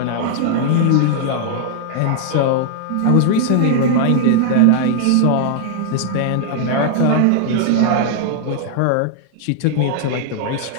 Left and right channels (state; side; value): different; both; correlation -0.01